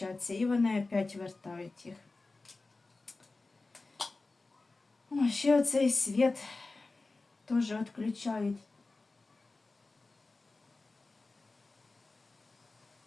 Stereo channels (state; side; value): quieter; right; 3.5 dB